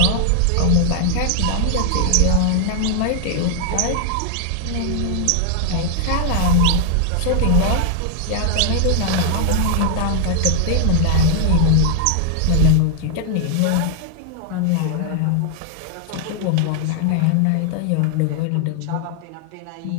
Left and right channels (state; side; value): different; both; correlation 0.00